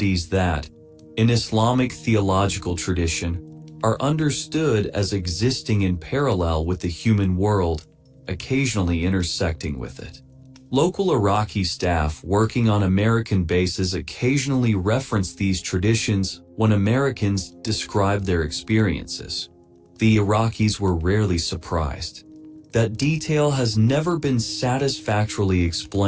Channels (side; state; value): both; identical; correlation 1.00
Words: that, in Islamic theological tradition, are understood as existing in parallel with the human world, occasionally intersecting with it. Local Iraqi staff working on American bases occasionally reference these traditions when Americans describe their experiences. The Iraqis were rarely surprised. That detail has never been satisfactorily